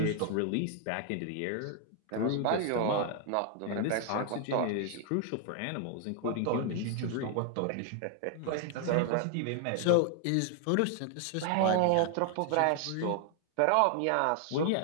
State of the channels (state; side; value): different; both; correlation 0.00